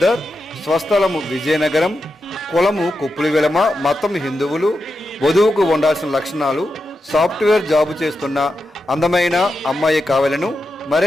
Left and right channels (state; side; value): normal; both; correlation 0.88